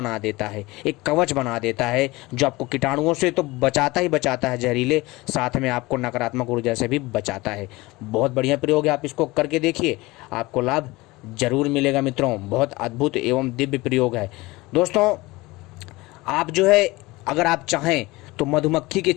देता है, एक कवच बना देता है, जो आपको कीटाणुओं से तो बचाता ही बचाता है जहरीले, साथ में आपको नकारात्मक ऊर्जा से भी बचाता है। बहुत बढ़िया प्रयोग है, आप इसको करके देखिए, आपको लाभ जरूर मिलेगा मित्रों। बहुत अद्भुत एवं दिव्य प्रयोग है दोस्तों। आप जो है अगर आप चाहें तो मधुमक्खी के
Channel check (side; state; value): right; quieter; 21.4 dB